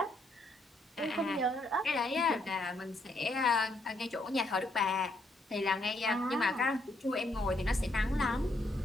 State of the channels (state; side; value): normal; both; correlation 0.74